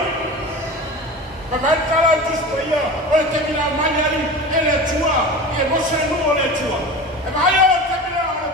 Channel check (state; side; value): normal; both; correlation 0.32